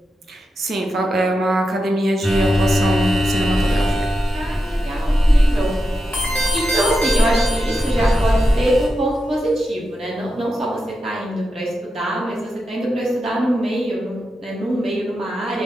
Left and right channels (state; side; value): normal; both; correlation 0.88